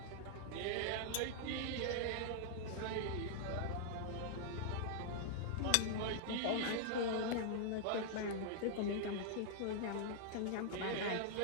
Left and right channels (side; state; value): both; different; correlation -0.01